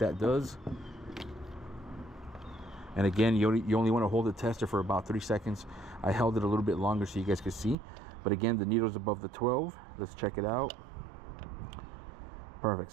does. And again, you only want to hold the tester for about 3 seconds. I held it a little bit longer so you guys could see. But again, the needle's above the 12. Let's check it out. Perfect.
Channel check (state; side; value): drops out; left; at 7.8 s